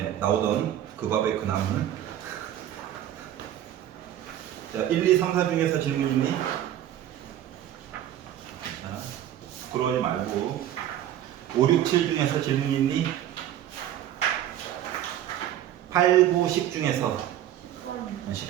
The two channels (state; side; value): quieter; left; 11.8 dB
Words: 나오던 그 밥의 그 나무는. 자, 1, 2, 3, 4 중에서 질문 있니? 자, 부끄러워하지 말고. 5, 6, 7 중에서 질문 있니? 8, 9, 10 중에서